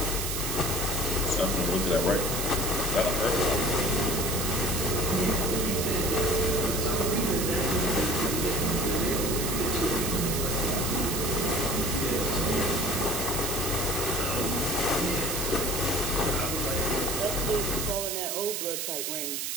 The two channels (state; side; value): noise; right; hiss, 2 dB below the sound